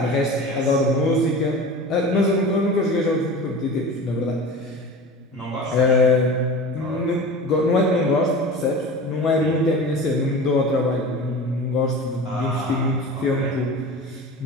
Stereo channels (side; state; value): both; normal; correlation 0.34